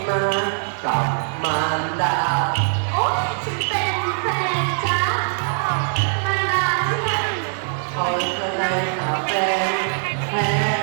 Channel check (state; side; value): silent; left; digital silence